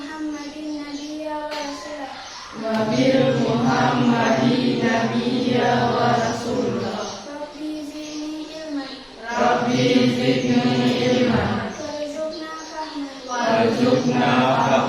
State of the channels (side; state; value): both; identical; correlation 1.00